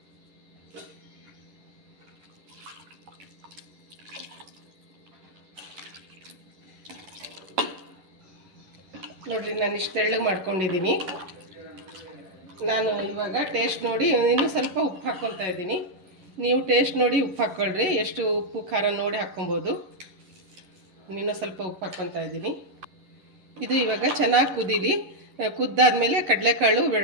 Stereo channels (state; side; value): late; left; 11 ms